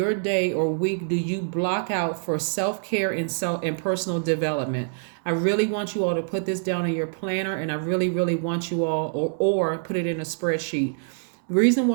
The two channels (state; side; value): silent; left; digital silence